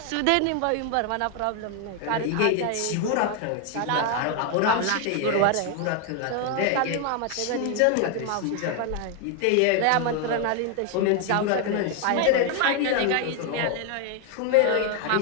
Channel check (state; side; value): different; both; correlation 0.01